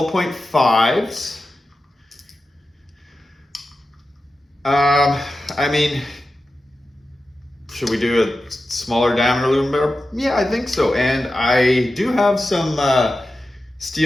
I mean, should we do a smaller diameter aluminum barrel? Yeah, I think so. And I do have some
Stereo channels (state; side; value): normal; both; correlation 0.92